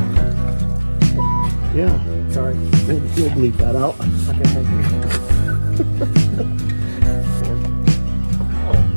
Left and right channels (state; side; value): inverted; both; correlation -1.00